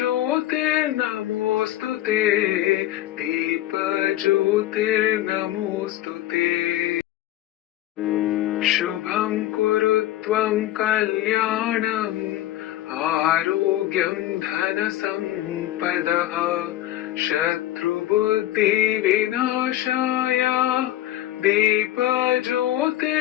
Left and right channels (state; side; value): quieter; right; 14.2 dB